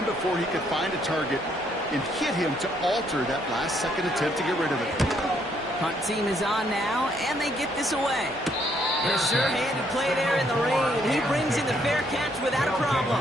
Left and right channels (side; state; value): both; normal; correlation 0.70